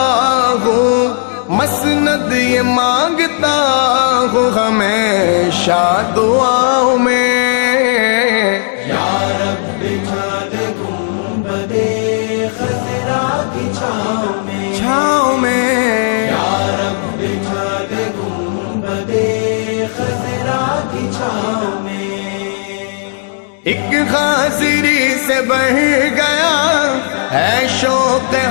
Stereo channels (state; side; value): silent; right; digital silence